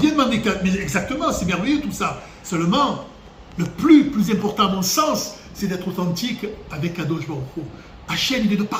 demander, mais exactement, c'est merveilleux tout ça. Seulement, le plus important à mon sens, c'est d'être authentique avec Kadosh Baruch Hu. Hachem, il est de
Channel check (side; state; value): both; identical; correlation 1.00